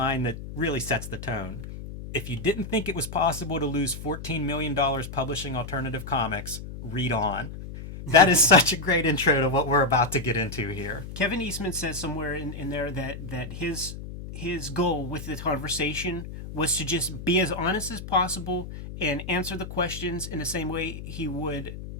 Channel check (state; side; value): noise; left; hum, 10 dB below the sound